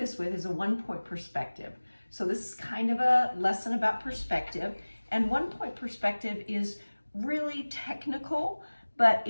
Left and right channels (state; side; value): inverted; both; correlation -1.00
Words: with is a 1-point perspective. So this is kind of a lesson about perspective. And 1-point perspective is really technical, but